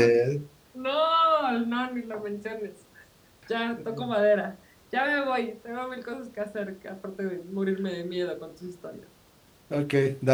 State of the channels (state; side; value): identical; both; correlation 1.00